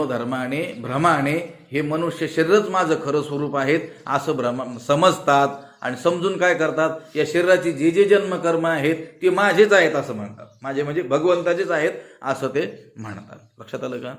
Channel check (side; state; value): both; identical; correlation 1.00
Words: भ्रमाने हे मनुष्य शरीरच माझं खरं स्वरूप आहेत असं समजतात आणि समजून काय करतात? या शरीराची जे जे जन्मकर्म आहेत ते माझेच आहेत असं म्हणतात. माझे म्हणजे भगवंताचेच आहेत असं ते म्हणतात. लक्षात आलं का?